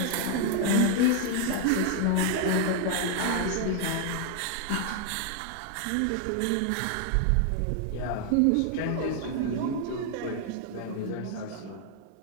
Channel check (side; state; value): both; different; correlation 0.00